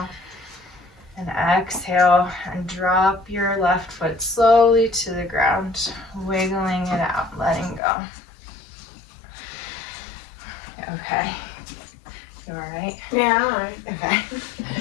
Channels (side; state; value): right; drops out; at 7.8 s